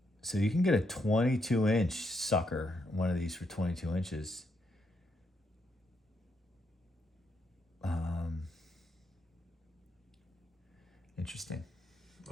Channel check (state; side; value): normal; both; correlation 0.78